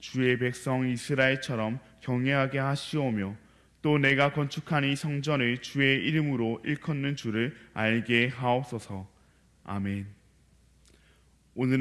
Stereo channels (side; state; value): both; identical; correlation 1.00